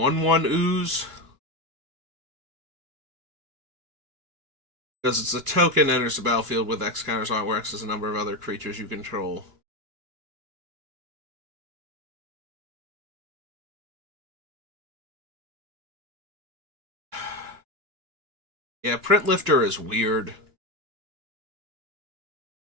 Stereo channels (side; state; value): left; late; 2.9 ms